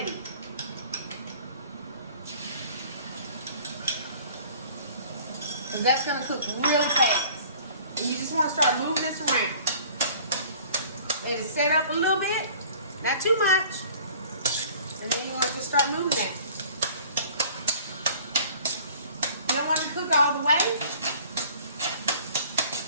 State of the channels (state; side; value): inverted; both; correlation -0.48